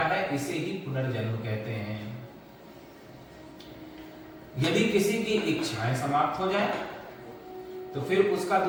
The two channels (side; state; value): both; identical; correlation 1.00